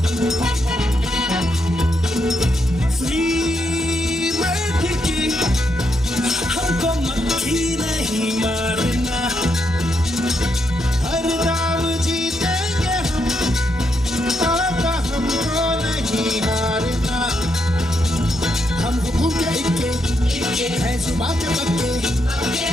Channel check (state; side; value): normal; both; correlation 0.80